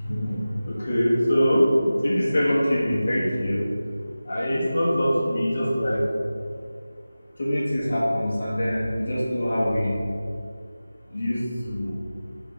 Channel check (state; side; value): inverted; both; correlation -0.96